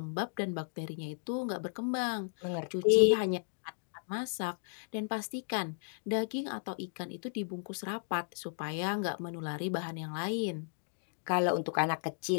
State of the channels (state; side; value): silent; right; digital silence